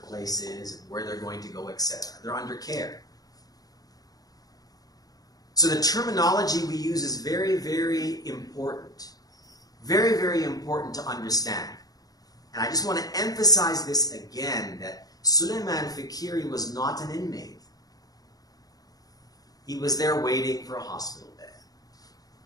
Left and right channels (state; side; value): late; right; 0.18 ms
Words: is, and where they're going to go, etc. They're under care. So the terminology we use is very, very important. Very, very important to understand. And I just want to emphasize this again, that Suleiman Fakiri was not an inmate. He was there waiting for a hospital bed.